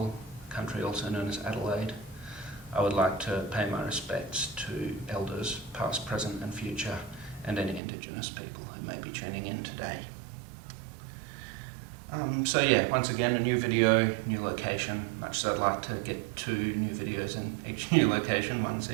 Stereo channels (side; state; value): left; drops out; at 7.8 s